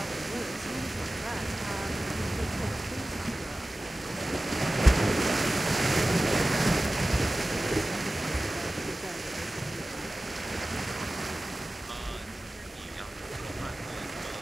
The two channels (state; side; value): normal; both; correlation 0.96